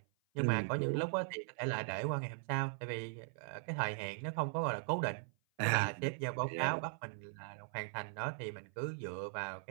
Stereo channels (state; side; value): silent; left; 52 dB below the other